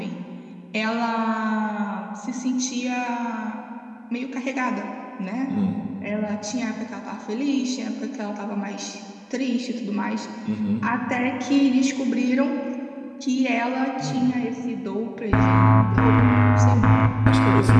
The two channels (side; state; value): both; identical; correlation 1.00